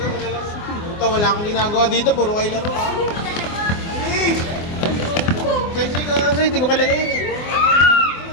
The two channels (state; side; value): late; right; 24 ms